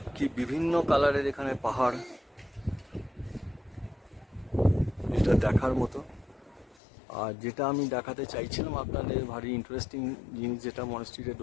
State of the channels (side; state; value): right; drops out; at 6.8 s